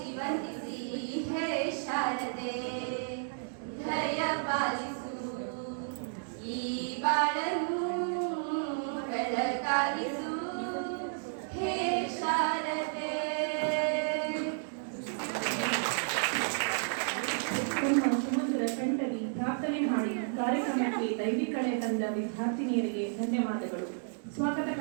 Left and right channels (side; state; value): left; silent; digital silence